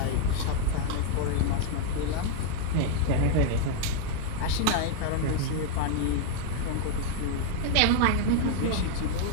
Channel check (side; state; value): both; different; correlation 0.00